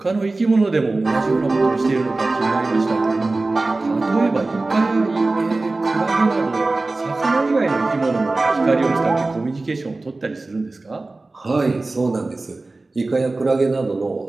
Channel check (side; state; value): left; quieter; 3.3 dB